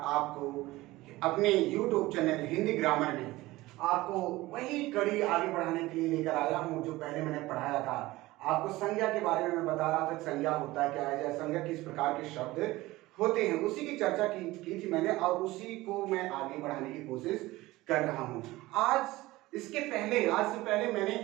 आपको अपने YouTube चैनल हिंदी ग्रामर में आपको वही कड़ी आगे बढ़ाने के लिए लेकर आया हूँ जो पहले मैंने पढ़ाया था। आपको संज्ञा के बारे में मैं बता रहा था, संज्ञा होता है क्या है, या संज्ञा किस प्रकार के शब्द होते हैं, उसी की चर्चा की थी मैंने और उसी को मैं आगे बढ़ाने की कोशिश कर रहा हूँ। आज से पहले मैंने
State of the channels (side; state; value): left; quieter; 18.8 dB